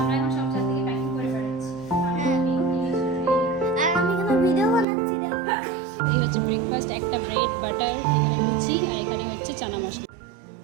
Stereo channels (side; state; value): left; drops out; at 4.9 s